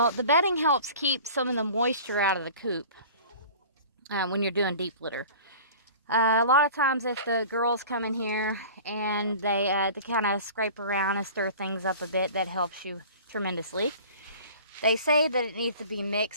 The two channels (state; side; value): inverted; both; correlation -0.42